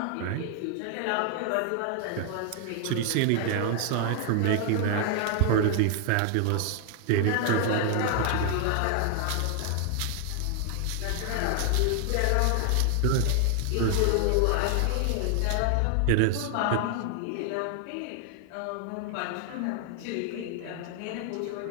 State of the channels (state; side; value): different; both; correlation 0.00